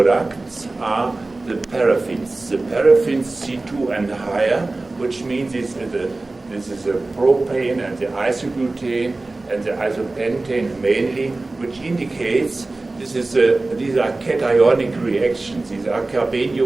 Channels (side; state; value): left; quieter; 3.2 dB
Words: are the paraffins. The paraffins C2 and higher, which means this is a propane and the isobutane and the isopentane mainly, which indicates these are cationic reactions. These are